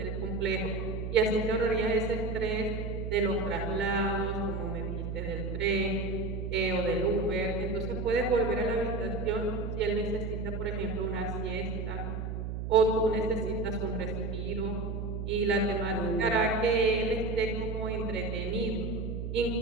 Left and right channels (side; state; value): right; noise; hum, 4 dB below the sound